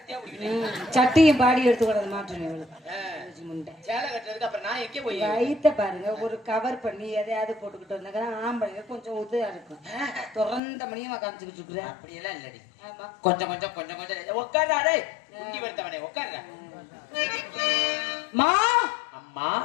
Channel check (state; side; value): drops out; right; at 10.6 s